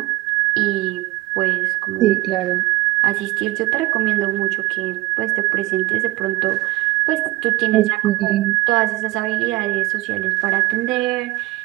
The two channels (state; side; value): quieter; left; 18.8 dB